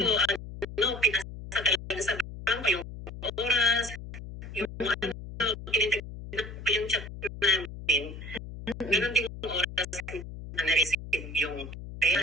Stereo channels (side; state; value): left; noise; hum, 11 dB below the sound